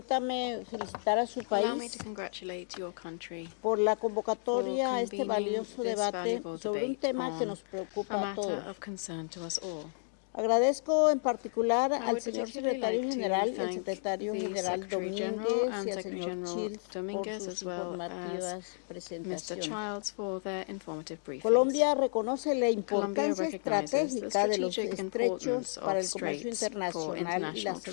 felicitar a su allow me país to congratulate your country por la convocatoria a este convening valioso this debate valuable sobre un debate tema que on nos preocupa a a matter todos. of concern to us all. Agradezco en particular I al would señor particularly secretario like to general, el thank secretario the general Secretary General Domínguez and y al Secretary señor General Childs por Dominguez, sus as well informativas as Mr. presentaciones. Childs for their informative briefings. Colombia reconoce la Colombia importancia recognizes the estratégica de los strategic estrechos importance para of el comercio straits for internacional y la international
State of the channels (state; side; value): silent; right; digital silence